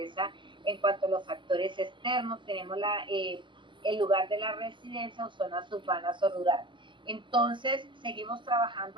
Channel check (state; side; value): late; left; 0.23 ms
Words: En cuanto a los factores externos, tenemos el lugar de la residencia o zonas urbanas o rurales. Entonces, seguimos